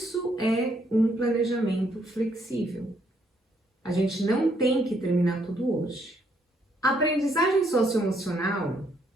é um planejamento flexível. A gente não tem que terminar tudo hoje. A aprendizagem socioemocional,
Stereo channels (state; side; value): normal; both; correlation 0.71